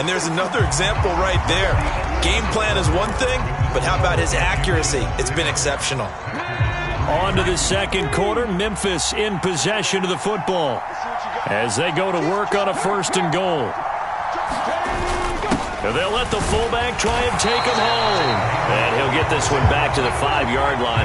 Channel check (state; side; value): identical; both; correlation 1.00